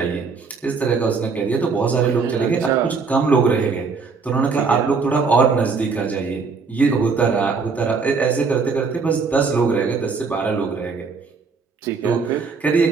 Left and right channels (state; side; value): quieter; left; 4.9 dB